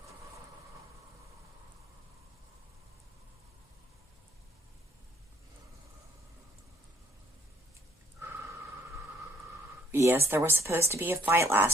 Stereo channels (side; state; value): both; normal; correlation 0.64